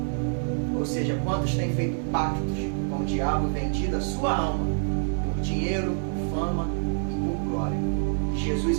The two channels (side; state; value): left; silent; digital silence